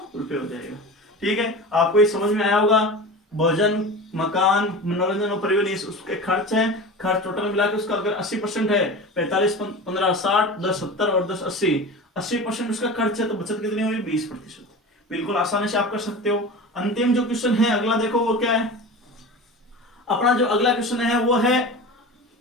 रुपए हो जाएगा। ठीक है, आपको ये समझ में आया होगा। भोजन, मकान, मनोरंजन और परिवहन उसके खर्च हैं। खर्च टोटल मिला के उसका अगर 80% है, 45 15 60 10 70 और 10 80, 80% उसका खर्च है, तो बचत कितनी हुई, 20%। बिल्कुल आसानी से आप कर सकते हो। अंतिम जो क्वेश्चन है अगला देखो वो क्या है। अपना जो अगला क्वेश्चन है वो है,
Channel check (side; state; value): both; normal; correlation 0.31